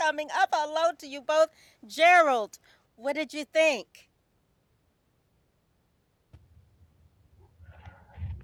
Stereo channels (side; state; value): both; identical; correlation 1.00